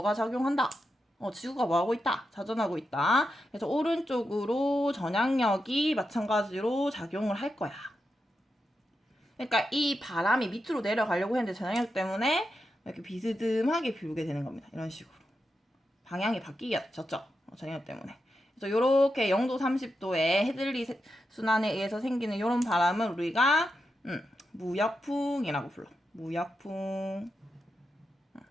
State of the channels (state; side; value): normal; both; correlation 0.88